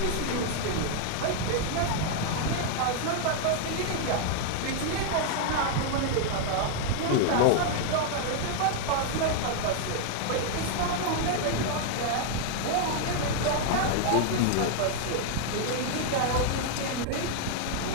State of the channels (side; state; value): both; different; correlation 0.00